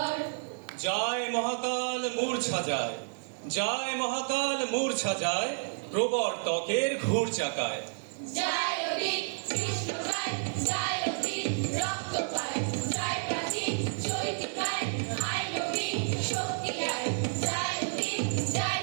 জয় মহাকাল মূর্ছা যায়, জয় মহাকাল মূর্ছা যায়, প্রবর্তকের ঘুর চাকায়। জয় অধিক কৃষ্ণ গায়, জয় অধিক রক্ত পায়, জয় প্রাচীন চৈতি পায়, আয় নবীন শক্তি আয়। জয় অধিক জয়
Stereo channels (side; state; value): left; silent; digital silence